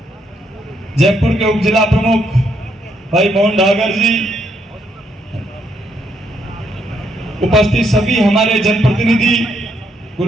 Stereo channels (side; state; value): both; normal; correlation 0.74